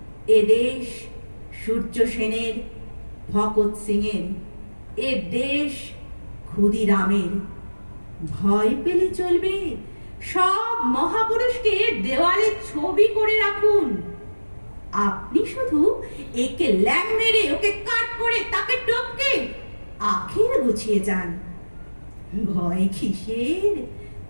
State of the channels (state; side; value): inverted; both; correlation -1.00